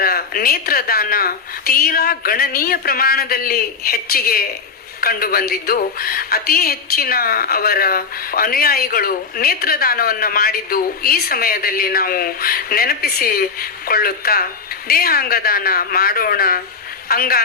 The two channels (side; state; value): right; quieter; 5.2 dB